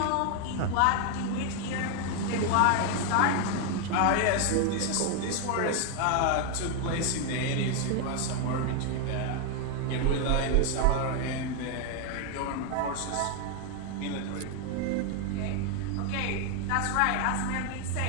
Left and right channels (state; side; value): different; both; correlation 0.01